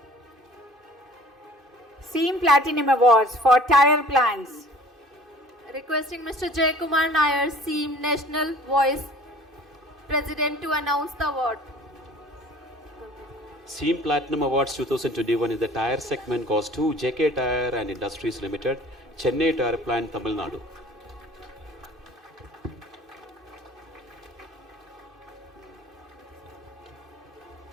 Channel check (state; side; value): normal; both; correlation 0.48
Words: SEAM Platinum Awards for tire plants. Requesting Mr. Jay Kumar Nair, SEAM National Vice President, to announce the award. SEAM Platinum Awards 2021 in the tire segment goes to JK Tire and Industries Limited, Chennai Tire Plant, Tamil Nadu.